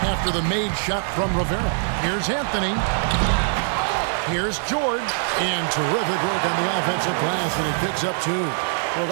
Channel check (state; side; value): silent; left; digital silence